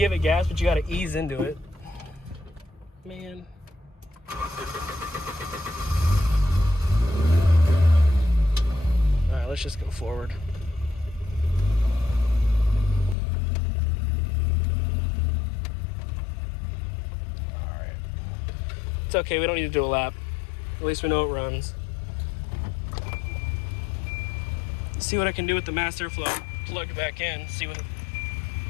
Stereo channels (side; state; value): right; drops out; at 13.2 s